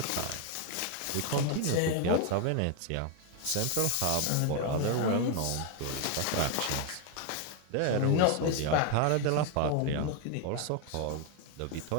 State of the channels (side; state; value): both; different; correlation 0.01